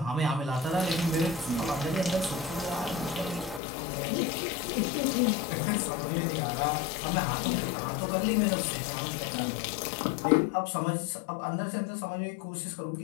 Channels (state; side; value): drops out; right; at 3.6 s